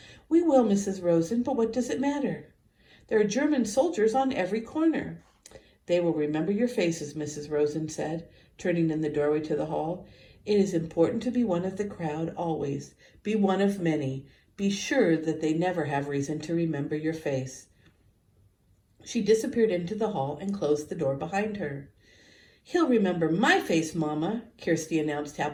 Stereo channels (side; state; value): both; identical; correlation 1.00